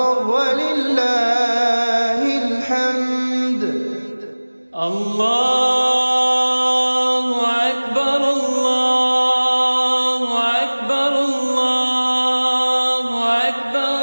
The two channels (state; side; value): inverted; both; correlation -1.00